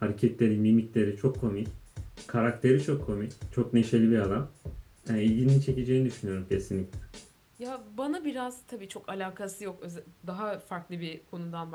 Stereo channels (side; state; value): both; identical; correlation 1.00